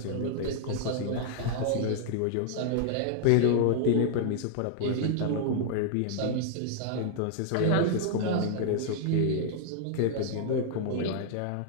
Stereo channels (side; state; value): both; different; correlation -0.01